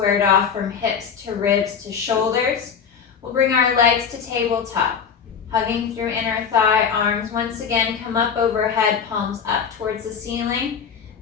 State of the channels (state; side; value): quieter; right; 6.8 dB